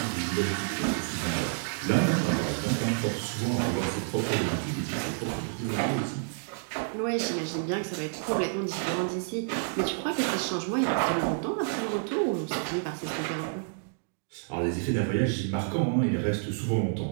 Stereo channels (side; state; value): left; silent; digital silence